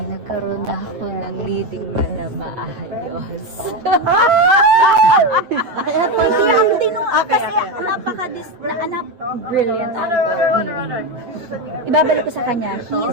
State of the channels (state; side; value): late; left; 8.3 ms